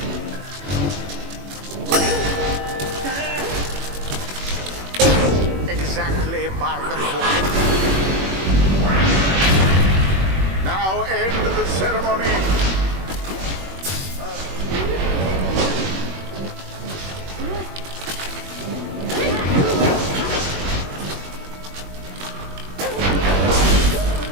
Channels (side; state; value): left; late; 21 ms